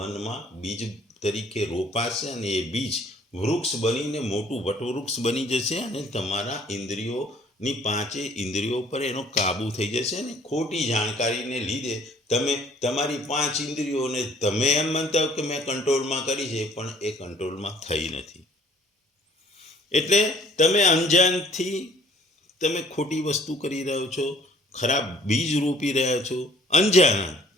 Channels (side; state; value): both; normal; correlation 0.57